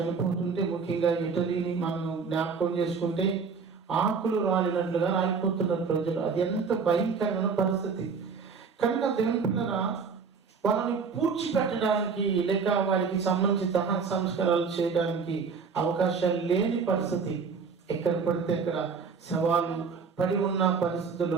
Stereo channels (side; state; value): left; quieter; 5.4 dB